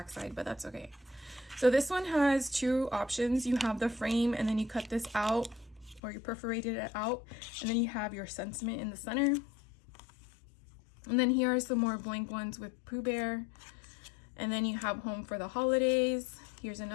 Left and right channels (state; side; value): drops out; right; at 6.0 s